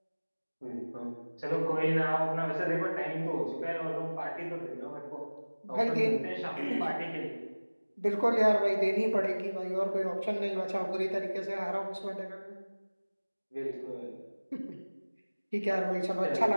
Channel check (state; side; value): inverted; both; correlation -1.00